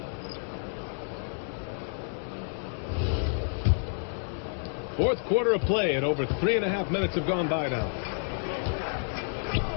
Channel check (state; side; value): silent; right; digital silence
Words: Fourth quarter of play, and over 3.5 minutes have gone by now.